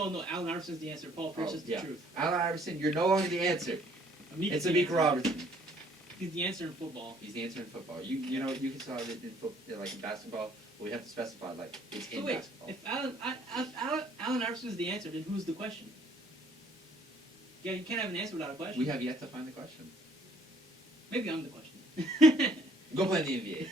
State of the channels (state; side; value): normal; both; correlation 0.61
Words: Allen Iverson's the answer. Paul Pierce is the truth. Allen Iverson, you're no longer the answer. It's Amik Robertson. He's the answer in football. He's the answer in football. You can tell it in like in basketball, but we have to specify like it's in basketball. If Allen Iverson is the answer, then who's the question? Yeah, you can't have an answer without a question. We have yet to find the question. Maybe I'm the question. Go play in the